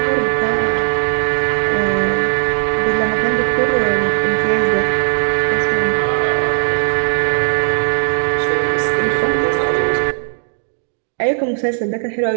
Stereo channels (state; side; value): silent; left; 66 dB below the other